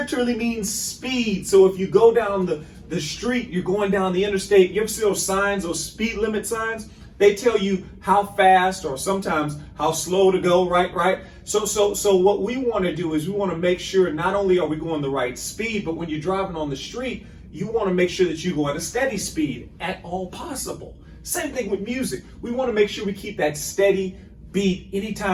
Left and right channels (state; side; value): identical; both; correlation 1.00